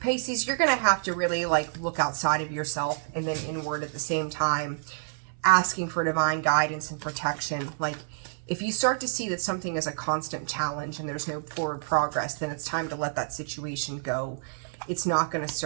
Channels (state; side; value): silent; left; 59 dB below the other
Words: Pisces, you're going to have to really like look outside of yourself and then inward at the same time, asking for divine guidance and protection. Like, if you start to see that something is a constant challenge and there's no forward progress, then it's time to let that situation go. It's not going to